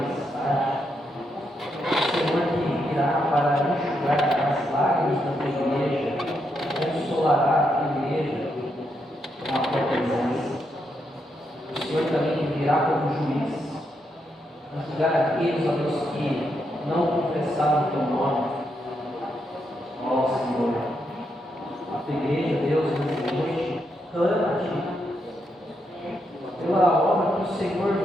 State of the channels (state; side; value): normal; both; correlation 0.81